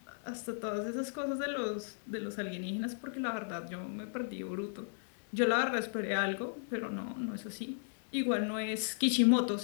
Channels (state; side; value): silent; right; 54 dB below the other